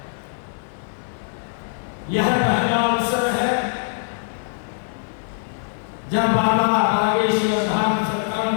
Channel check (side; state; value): right; silent; 64 dB below the other